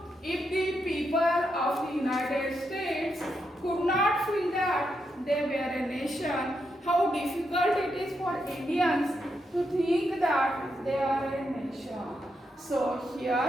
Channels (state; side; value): normal; both; correlation 0.82